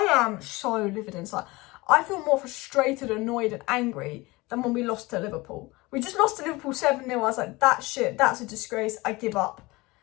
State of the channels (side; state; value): right; quieter; 22.2 dB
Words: am so livid inside. I feel more frustrated, annoyed, and angry than when we lost to Liverpool. We just lost to Liverpool 7-0. I was like, that shit, that's a disgrace. I give up.